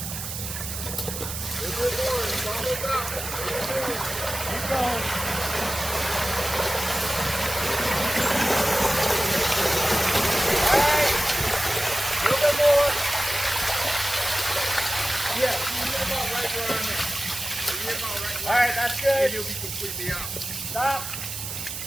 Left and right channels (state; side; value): noise; right; hiss, 6 dB below the sound